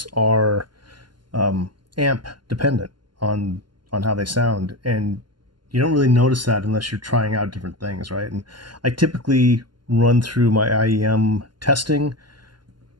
are amp dependent on on how they sound, and you don't really notice that unless you're trying out different things, right? And I typically run through my IEM testing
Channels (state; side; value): late; left; 0.71 ms